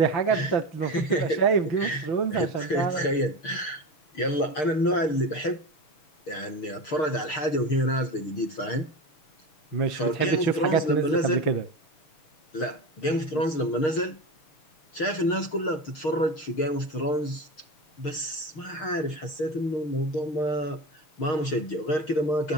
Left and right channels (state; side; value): late; right; 6.5 ms